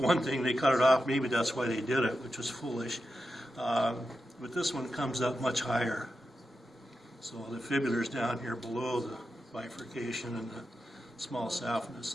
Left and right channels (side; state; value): both; normal; correlation 0.89